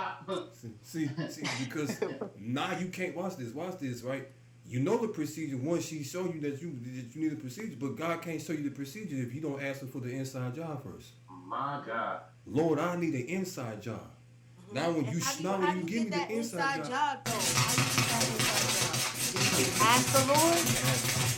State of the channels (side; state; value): both; identical; correlation 1.00